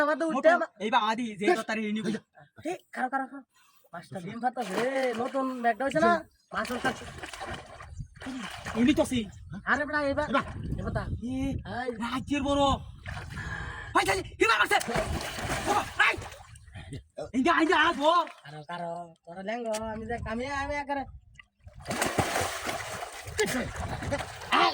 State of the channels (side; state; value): both; identical; correlation 1.00